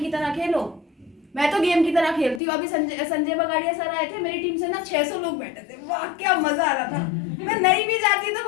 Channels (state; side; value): drops out; right; at 2.4 s